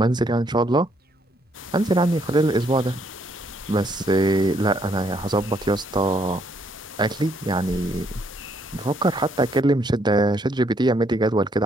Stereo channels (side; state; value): both; normal; correlation 0.70